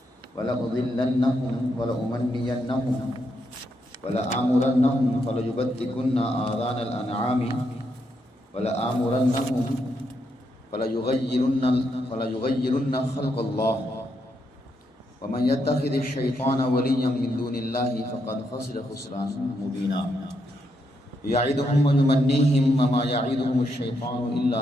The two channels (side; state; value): both; normal; correlation 0.80